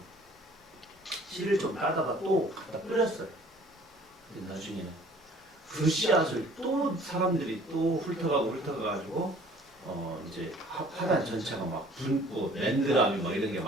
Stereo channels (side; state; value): both; normal; correlation 0.53